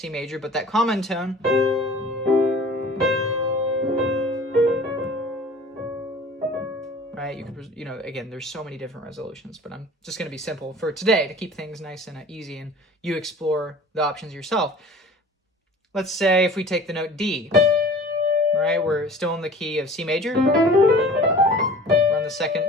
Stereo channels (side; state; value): both; normal; correlation 0.44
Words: major, but that common tone, right? You could, you know, again, there's so many different resolutions, but I'm just going to be simple for today to keep things nice and easy, and you explore the options yourself. Let's say if we take the note D, right? We're still in the key of C major. We're on the second